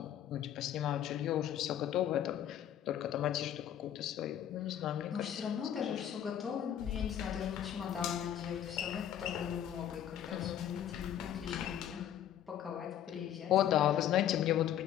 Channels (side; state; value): right; quieter; 10.5 dB